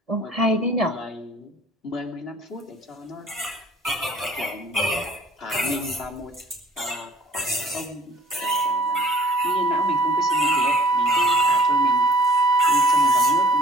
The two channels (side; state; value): both; normal; correlation 0.55